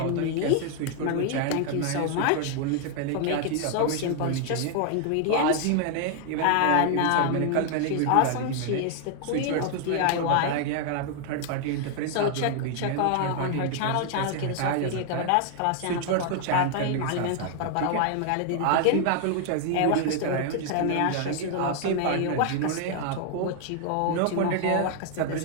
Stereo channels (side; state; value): both; different; correlation 0.00